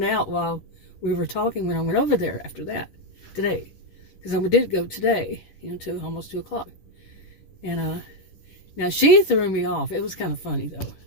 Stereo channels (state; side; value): late; right; 10 ms